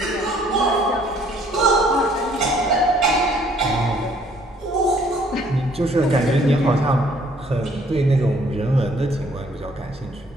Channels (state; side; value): normal; both; correlation 0.61